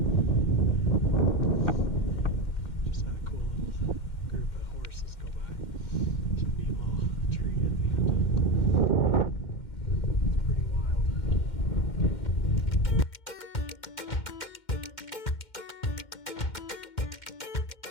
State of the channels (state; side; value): late; right; 2.1 ms